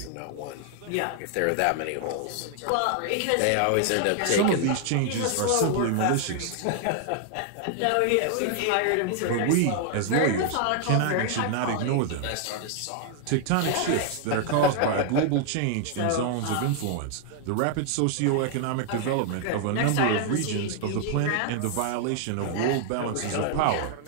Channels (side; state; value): both; different; correlation 0.00